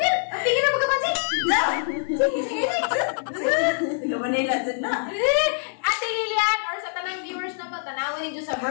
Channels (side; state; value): right; silent; digital silence